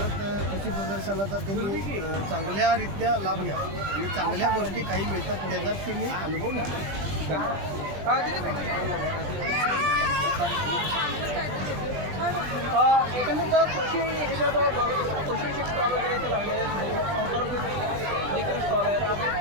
कृषी प्रदर्शनाचा त्यांनी चांगल्यारीत्या लाभ घ्यावा आणि चांगल्या गोष्टी काही मिळतात त्याचा तुम्ही अनुभव घ्या. एकंदरीत कृषी ह्याच्यात कृषी स्टॉल वगैरे इथे लागलेले आहेत, संसार स्टॉल आहेत, आपण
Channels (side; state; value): left; late; 20 ms